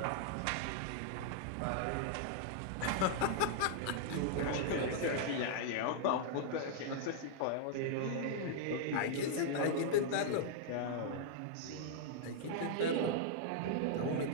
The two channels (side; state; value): both; different; correlation -0.01